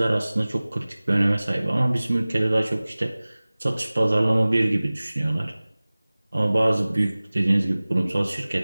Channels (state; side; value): inverted; both; correlation -0.99